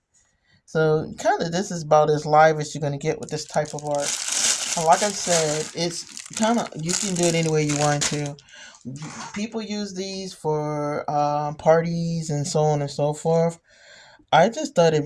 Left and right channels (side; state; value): both; identical; correlation 1.00